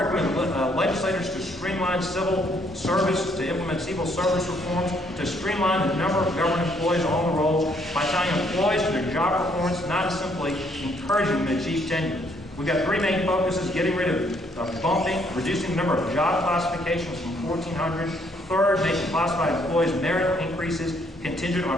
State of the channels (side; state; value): both; normal; correlation 0.68